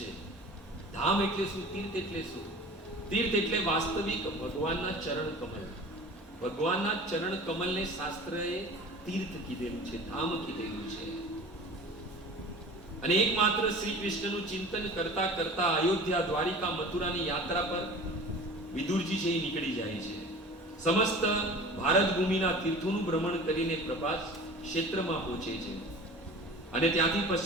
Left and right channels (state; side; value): normal; both; correlation 0.40